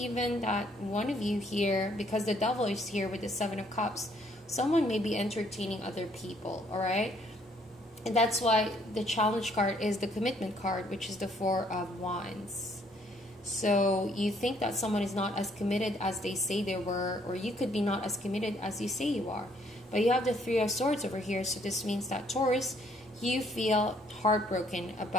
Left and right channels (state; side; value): normal; both; correlation 0.66